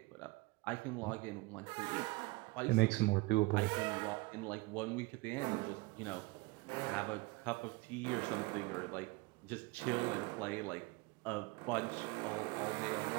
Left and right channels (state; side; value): quieter; left; 23.7 dB